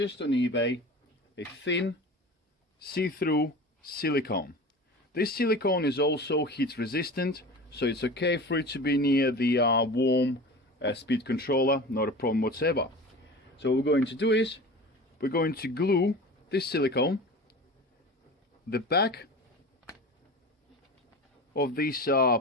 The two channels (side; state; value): both; normal; correlation 0.35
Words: on eBay a thin see-through silicone. This silicone is also heat resistant, so it's okay for it to be near the warm speed controller, not a problem whatsoever. So what we're going to do is we're going to glue this silicone the back of this